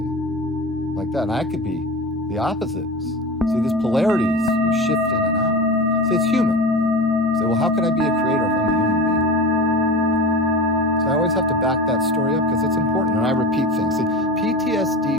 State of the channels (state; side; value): normal; both; correlation 0.29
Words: like that. And I could be the opposites. See, these polarities, you shift in and out. See, it's human. Say, well, how can I be a creator if I'm a human being? So I always have to back that story up because it's important, and I repeat things. See, PTSD